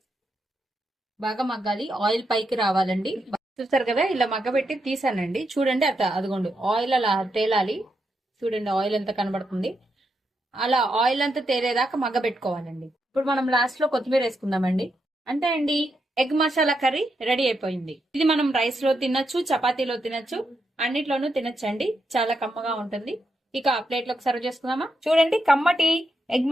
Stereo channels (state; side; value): normal; both; correlation 0.83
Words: బాగా మగ్గాలి, ఆయిల్ పైకి రావాలండి. చూస్తారు కదా, ఇలా మగ్గబెట్టి తీసానండి. చూడండి అట్లా, అదిగోండి ఆయిల్ అలా తేలాలి. చూడండి ఆయిల్ ఎంత కనబడుతుంది. అలా ఆయిల్ అంతా తేలేదాకా మగ్గబెట్టుకోవాలండి. ఇప్పుడు మనం లాస్ట్ లో కొత్తిమీర వేసుకుందామండి. అంటే అండి, ఎగ్ మసాలా కర్రీ రెడీ అయిపోయింది. ఇది మనం రైస్ లో తినొచ్చు, చపాతీలో తినొచ్చు, అన్నిట్లోనూ తినొచ్చండి. చాలా కమ్మగా ఉంటుంది. ఇక ప్లేట్ లోకి సర్వ్ చేసుకుందామా. చూడండి, కమ్మటి ఎగ్